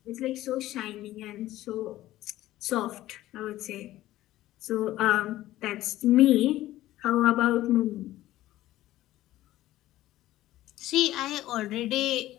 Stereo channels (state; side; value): quieter; right; 15.2 dB